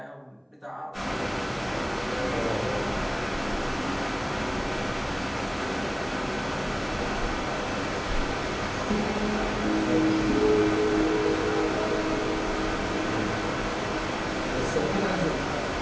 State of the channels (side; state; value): both; identical; correlation 1.00